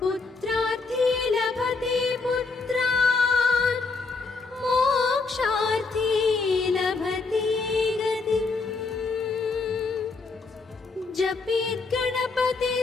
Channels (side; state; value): right; quieter; 4.1 dB